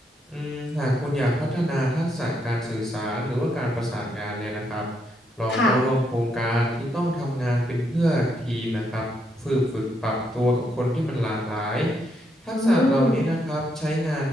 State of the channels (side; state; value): both; normal; correlation 0.77